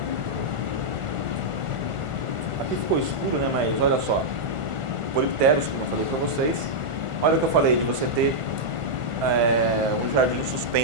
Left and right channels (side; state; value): left; late; 1.4 ms